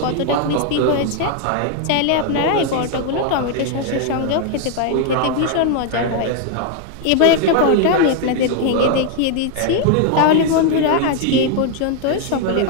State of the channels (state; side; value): different; both; correlation 0.00